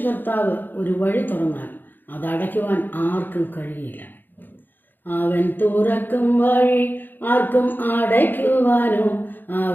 കർത്താവ് ഒരു വഴി തുറന്നാൽ അതടയ്ക്കുവാൻ ആർക്കും കഴിയില്ല. അവൻ തുറക്കും വഴി ആർക്കും അടയ്ക്കുവാനോ,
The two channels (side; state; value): right; late; 0.091 ms